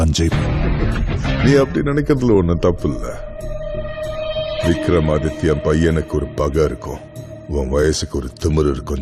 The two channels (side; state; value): both; identical; correlation 1.00